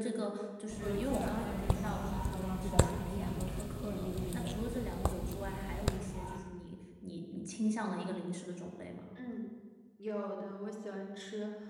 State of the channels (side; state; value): both; identical; correlation 1.00